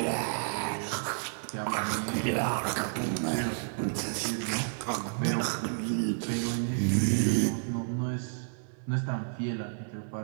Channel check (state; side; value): silent; left; 57 dB below the other